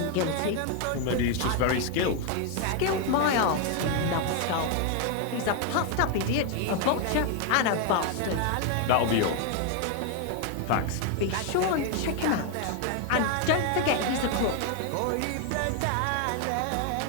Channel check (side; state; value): both; different; correlation 0.01